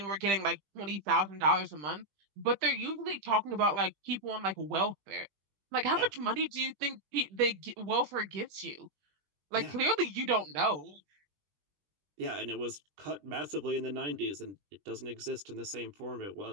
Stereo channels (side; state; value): left; late; 20 ms